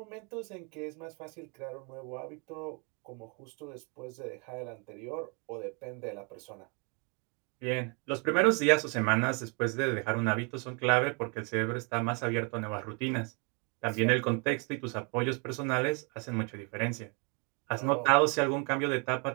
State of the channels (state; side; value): quieter; left; 34.1 dB